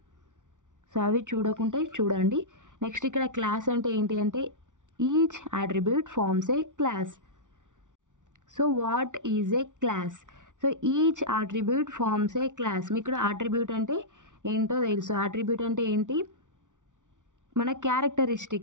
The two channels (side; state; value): left; late; 0.87 ms